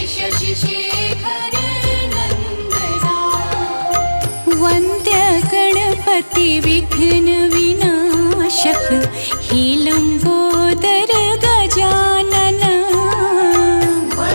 शशि शेखर नंदना। वन्द्य गणपति विघ्न विनाशक हे लंबोदर गजानन।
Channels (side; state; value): both; inverted; correlation -1.00